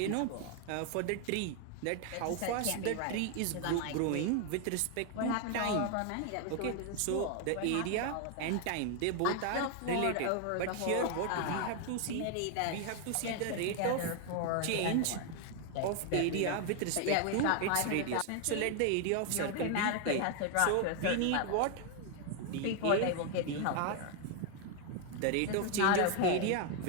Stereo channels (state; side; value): different; both; correlation 0.01